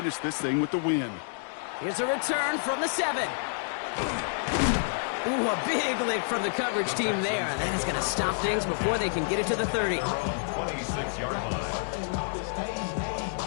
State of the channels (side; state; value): right; silent; digital silence